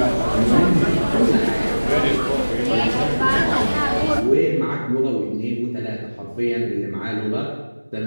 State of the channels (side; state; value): both; inverted; correlation -1.00